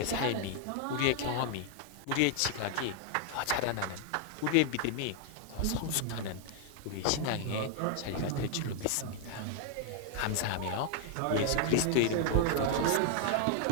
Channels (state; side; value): different; both; correlation 0.00